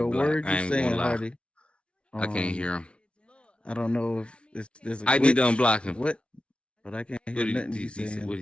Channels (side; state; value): right; late; 0.059 ms